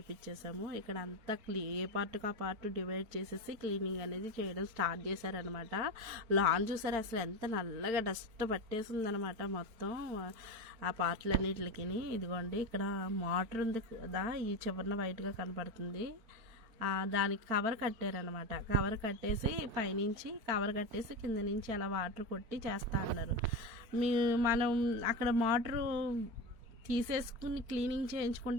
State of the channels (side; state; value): left; late; 4.4 ms